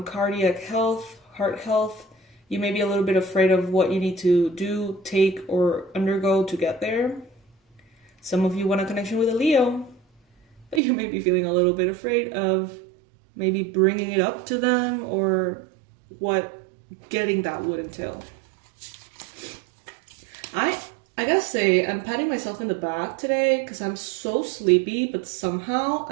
health, heart health, you may be a little bit afraid of what you need to do, take, or undergo to get there. Some of you want a connection with a Leo, but you may be feeling a little bit afraid of maybe bringing it up to them or what getting that would entail. I gotta say, I'm patting myself in the back today because I'm so sleepy, but somehow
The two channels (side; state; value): left; drops out; at 10.8 s